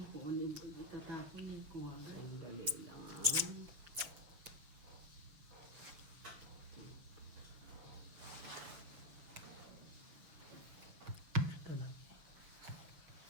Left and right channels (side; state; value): left; late; 6.3 ms